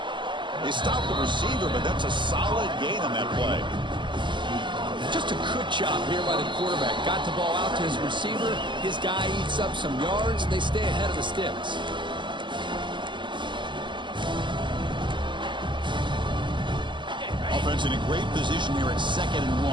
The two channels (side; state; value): left; late; 0.23 ms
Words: They stop the receiver, but that's a solid gain on that play. Just a good job here by the quarterback. Got the ball out to his receiver. His guy eats up some yards. They stay ahead of the sticks. Offense in a great position here at 2nd and